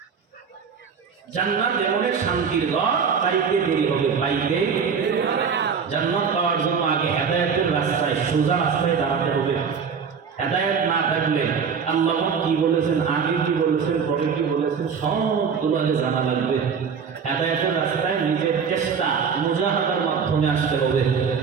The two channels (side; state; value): left; quieter; 6.2 dB